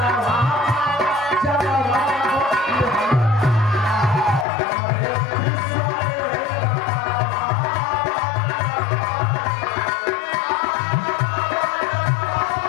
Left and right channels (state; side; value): drops out; right; at 4.5 s